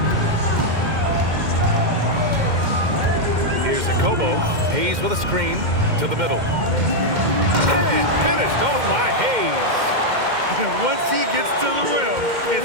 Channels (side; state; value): left; late; 2.1 ms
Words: Here's Akobo. Hayes with a screen to the middle. And finished off by Hayes. Once he gets to the rim,